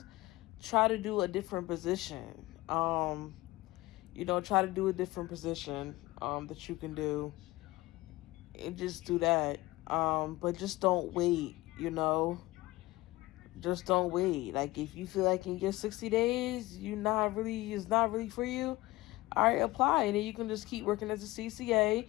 try to do a different position. Try to do a different position that you can do, and just do that. But just don't wait, just don't wait. Like if you feel like in your 60 days it's not really for you, all right, apply, and then you can just keep working as a CCA.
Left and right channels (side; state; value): right; quieter; 19.7 dB